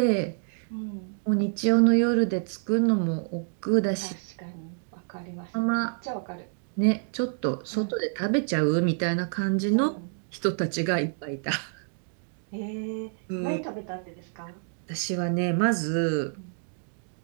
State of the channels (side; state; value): left; silent; 59 dB below the other